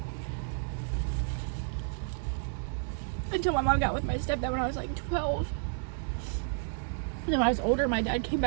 Until my mom got with my stepdad when I was like 12. And then when I was older, my dad came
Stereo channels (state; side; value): silent; left; digital silence